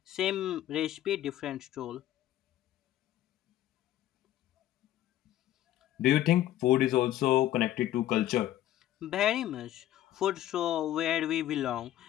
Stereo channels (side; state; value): right; quieter; 13.2 dB